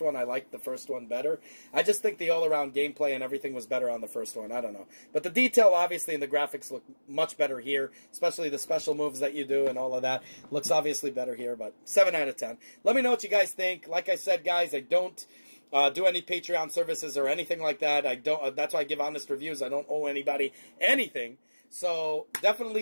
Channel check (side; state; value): both; inverted; correlation -1.00